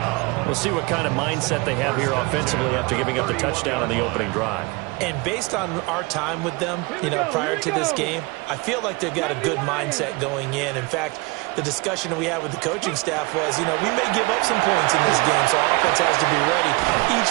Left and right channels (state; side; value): quieter; left; 25.7 dB